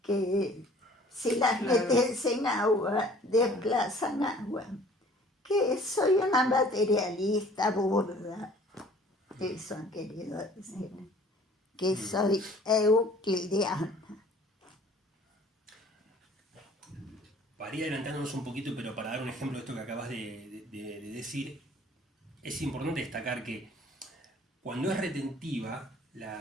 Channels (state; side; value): normal; both; correlation 0.52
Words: que si las metes en agua, desplazan agua. Que soy una materialista burda. Eso han querido decir. Que soy euclidiana. Para ir adelantándonos un poquito, pero para dar un ejemplo de esto que acabas de decir, es importante destacar que cuando es retentiva